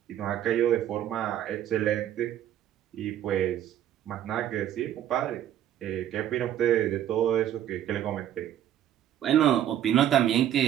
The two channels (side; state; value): left; quieter; 11.2 dB